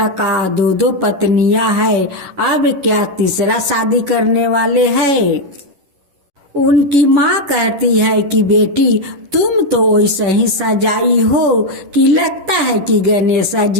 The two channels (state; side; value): late; left; 11 ms